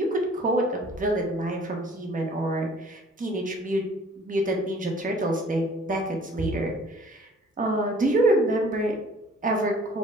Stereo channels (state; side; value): normal; both; correlation 0.54